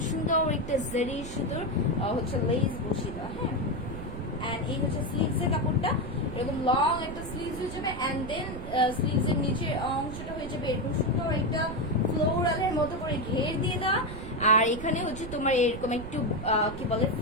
সুন্দর একটা জারি সুতোর হচ্ছে লেস বসিয়ে দেওয়া, হ্যাঁ। এন্ড এই হচ্ছে স্লিভস এর কাপড়টা, এরকম লং একটা স্লিভস হয়ে যাবে, এন্ড দেন স্লিভস এর নিচের অংশটা হয়ে যাবে এরকম সুন্দর একটা ফ্লোরালের মতো করে ঘের দিয়ে দেওয়া, আর এখানে হচ্ছে তোমার এরকম একটু কি বলে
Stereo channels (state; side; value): noise; right; rumble, 10 dB below the sound